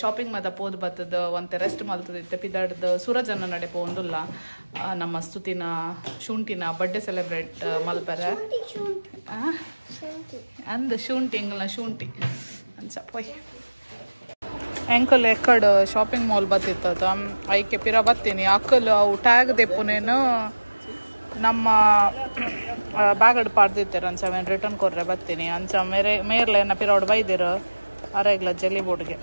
ಶಾಪಿಂಗ್ ಮಾತ ಪೋದು ಬತ್ತದ ಒಂತೆ ರೆಸ್ಟ್ ಮಲ್ತದಿತ್ತೆ ಪಿದಾಡ್ದು ಸೂರಜನ್ನ ನಡೆ ಪೋಂದುಲ್ಲ ನಮ್ಮ ಸ್ತುತಿನ ಶುಂಠಿನ ಬರ್ಡೇ ಸೆಲೆಬ್ರೇಟ್ ಮಲ್ಪರ ಅಂದ ಶುಂಠಿ ಎಂಗಲ್ನ ಶುಂಠಿ ಅಂಚ ಪೊಯ್ ಎಂಕಲ್ ಎಕ್ಕಡ್ ಶಾಪಿಂಗ್ ಮಾಲ್ ಬತ್ತಿತ್ತದ ಐಕೆ ಪಿರ ಬತ್ತೀನಿ ಅಕ್ಕಲ್ ಅವು ಟ್ಯಾಗ್ ದೆಪ್ಪುನೇನು ನಮ್ಮ ಬ್ಯಾಗಡ್ ಪಾಡ್ದಿತ್ತಾರೆ ಅಂಚ ಅವೇನು ರಿಟರ್ನ್ ಕೊರ್ರೆ ಬರ್ತೀನಿ ಅಂಚ ಮೇರ್ಲೆ ಏನ ಪಿರೋಡ್ ಬೈದಿರು ಅರೆಗ್ಲ ಜೆಲ್ಲಿ ಬೋರ್ಡ್ಗೆ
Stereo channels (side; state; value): both; inverted; correlation -1.00